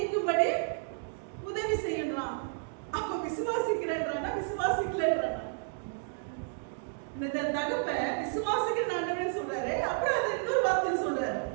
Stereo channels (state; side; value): silent; left; digital silence